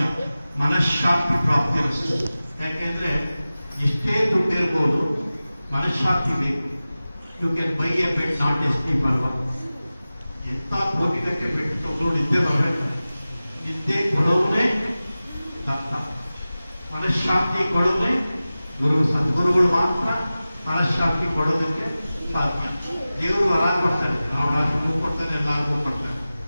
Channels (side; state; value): both; inverted; correlation -0.96